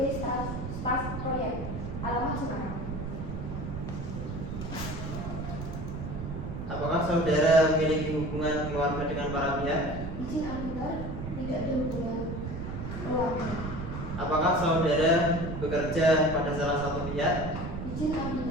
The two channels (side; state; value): right; noise; rumble, 6 dB below the sound